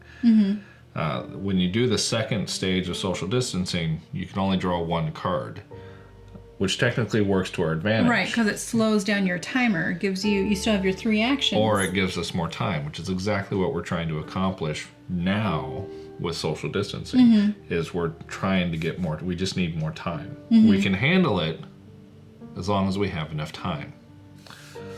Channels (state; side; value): identical; both; correlation 1.00